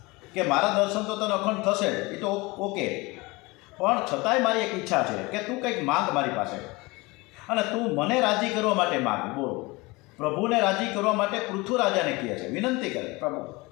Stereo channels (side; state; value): right; quieter; 23.8 dB